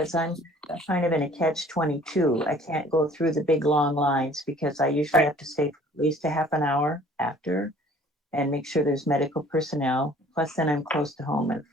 I'm kind of in a catch-22. I can't go through the big long lines, because I usually have to stay for at least a half an hour after and make sure there's medical personnel. Plus, then I'm close to home if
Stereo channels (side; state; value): both; normal; correlation 0.53